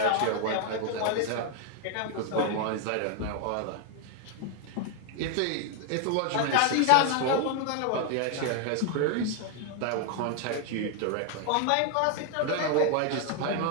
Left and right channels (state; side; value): different; both; correlation 0.00